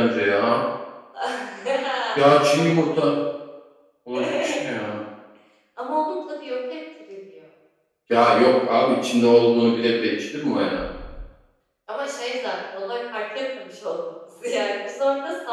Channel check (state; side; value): identical; both; correlation 1.00